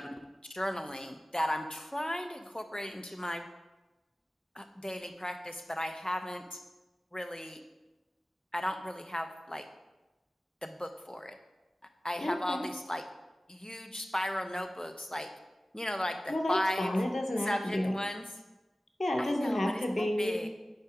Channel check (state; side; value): normal; both; correlation 0.96